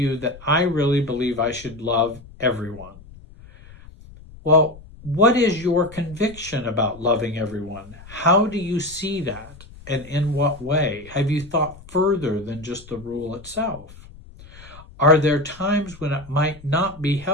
that I really believe I should love everyone, Well, what is your conviction about loving everyone? How do you see that? And in what way? Have you thought further than just the rule itself? Are there times when it might not be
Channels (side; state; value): left; noise; rumble, 20 dB below the sound